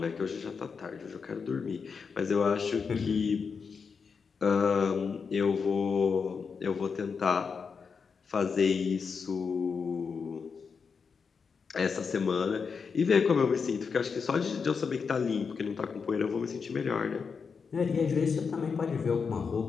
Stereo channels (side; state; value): right; quieter; 5.6 dB